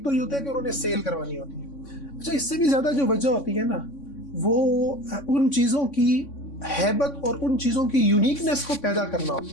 تو یہ ہوتا ہے کہ انہوں نے سیل کروانی ہوتی ہے۔ اچھا، اس سے بھی زیادہ جو وجہ ہوتی ہے نا وہ ان چیزوں کی ہیبت اور ان چیزوں کی یونیکنیس کو پیدا کرنا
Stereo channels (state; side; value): late; right; 3.6 ms